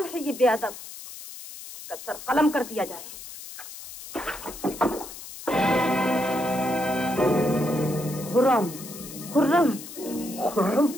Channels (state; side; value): noise; left; hiss, 13 dB below the sound